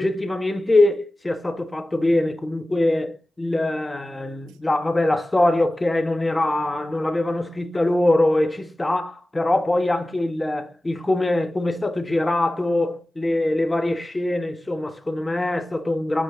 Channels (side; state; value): both; normal; correlation 0.96